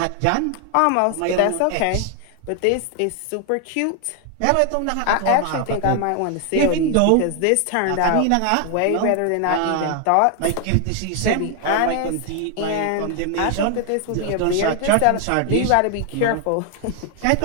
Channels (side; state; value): both; different; correlation 0.00